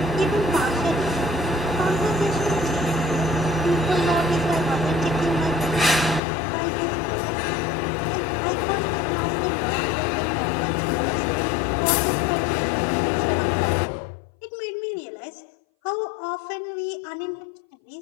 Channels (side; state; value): right; drops out; at 6.2 s